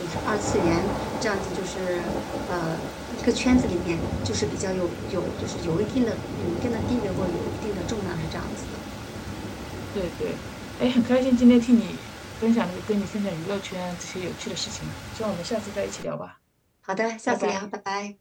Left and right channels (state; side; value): identical; both; correlation 1.00